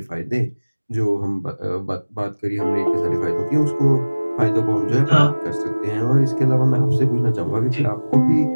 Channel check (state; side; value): inverted; both; correlation -1.00